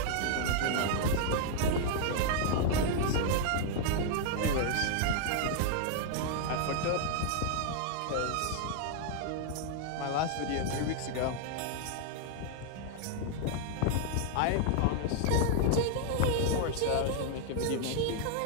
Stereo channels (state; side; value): different; both; correlation 0.00